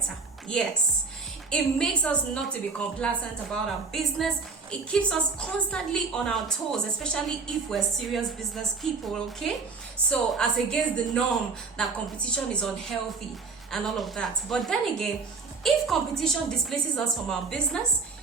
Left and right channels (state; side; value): quieter; left; 4.6 dB